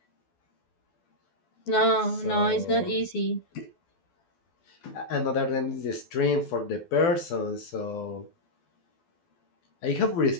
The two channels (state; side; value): late; right; 12 ms